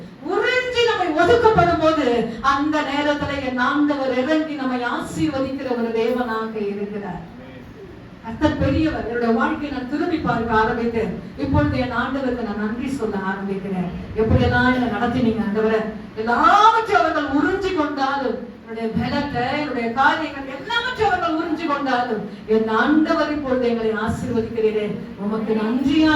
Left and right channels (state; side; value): identical; both; correlation 1.00